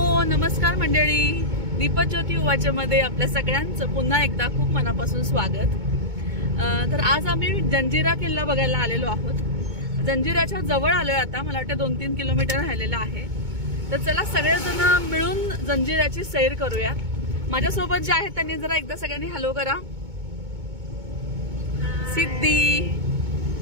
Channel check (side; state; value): left; late; 2.2 ms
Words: नमस्कार मंडळी, दीपज्योती उवाच्यामध्ये आपल्या सगळ्यांचं पुन्हा एकदा खूप मनापासून स्वागत। तर आज आम्ही जंजिरा किल्ला बघायला आलेलो आहोत। जंजिराच्या जवळ आलोय आता, मला वाटतं 2-3 किलोमीटर राहिलेला आहे। तर चला सगळेजण मिळून जंजिराची सैर करूया। माझ्यासोबत जे आहेत त्यांनी जरा एकदा सगळ्यांनी हॅलो करा। सिद्धी